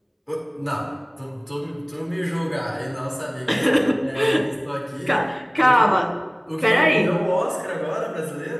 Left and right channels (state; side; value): identical; both; correlation 1.00